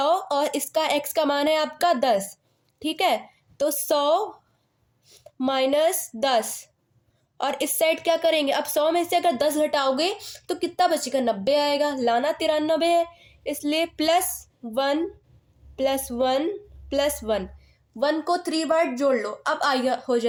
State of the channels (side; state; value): both; identical; correlation 1.00